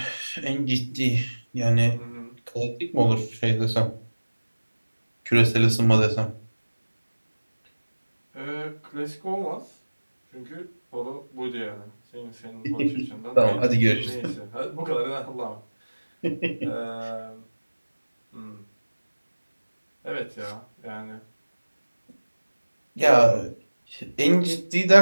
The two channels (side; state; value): both; inverted; correlation -1.00